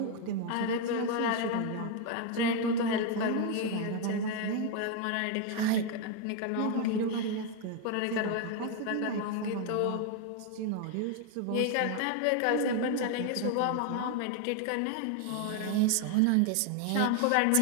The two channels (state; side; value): different; both; correlation 0.01